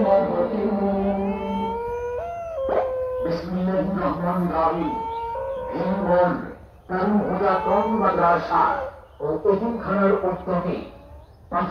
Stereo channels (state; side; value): identical; both; correlation 1.00